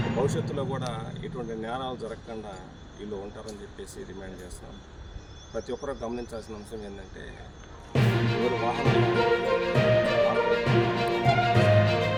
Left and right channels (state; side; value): identical; both; correlation 1.00